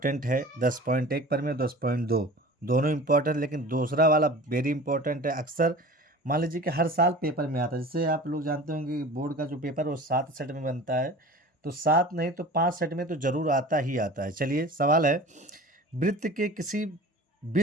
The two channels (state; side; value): normal; both; correlation 0.39